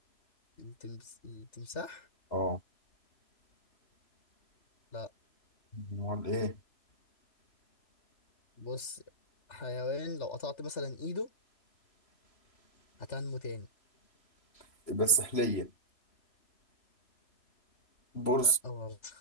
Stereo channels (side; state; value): right; late; 3.0 ms